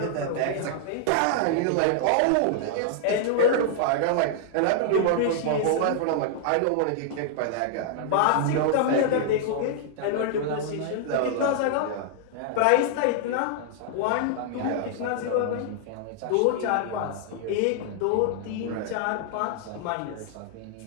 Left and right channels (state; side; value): different; both; correlation -0.01